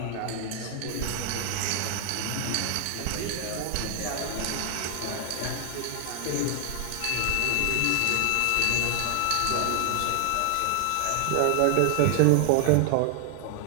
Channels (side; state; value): both; different; correlation 0.00